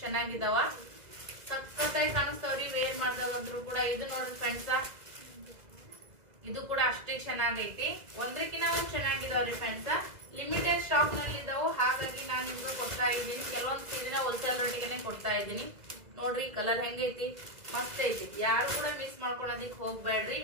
ಚೆನ್ನಾಗಿದಾವ, ಸಖತ್ತಾಗಿ ಕಾಣಿಸ್ತಾವ್ರಿ ವೇರ್ ಮಾಡ್ದಾಗಂದ್ರು ಕೂಡ. ಇದು ನೋಡ್ರಿ ಫ್ರೆಂಡ್ಸ್, ಇದು ಕೂಡ ಅಷ್ಟೇ ಚೆನ್ನಾಗೈತಿ, ಒಂದಕ್ಕಿಂತ ಒಂದ್ ಚೆನ್ನಾಗಿದಾವ್ರಿ ಫ್ರೆಂಡ್ಸ್. ಲಿಮಿಟೆಡ್ ಸ್ಟಾಕ್ ನಲ್ಲಿ ಇದಾವು, ಹಾಗಾಗಿ ನಾನು ನಿಮ್ಗೆ ಕೊಡ್ತಾ ಇದ್ದೀನಿ. ಕೆಲವೊಂದು ಸೀರೆನ ಹೋಲ್ಸೇಲ್ ರೇಟಿಗೆ ಕೊಡ್ತಾ ಇದ್ದೀನಿ. ನೋಡ್ರಿ ಕಲರ್ ಹೆಂಗೈತಿ, ಮಸ್ತ್ ಐತಿ. ಯಾರು ಕೂಡ ಮಿಸ್ ಮಾಡ್ಕೊಳೋದಿಕ್ ಹೋಗ್ಬೇಡ್ರಿ,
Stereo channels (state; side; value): late; left; 2.0 ms